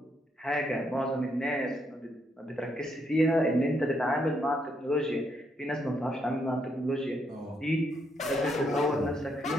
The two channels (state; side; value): normal; both; correlation 0.76